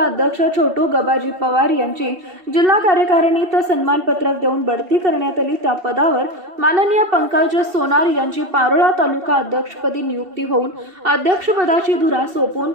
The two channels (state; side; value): late; left; 2.7 ms